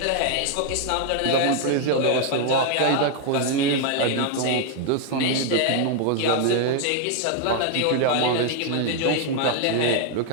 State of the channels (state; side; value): different; both; correlation 0.01